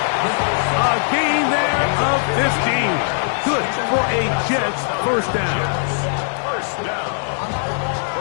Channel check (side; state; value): right; silent; digital silence